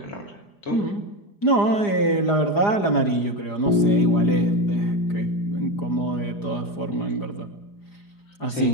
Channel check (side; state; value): right; late; 4.9 ms